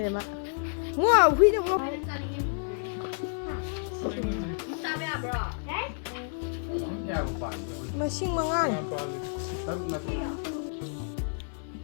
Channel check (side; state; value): right; silent; 58 dB below the other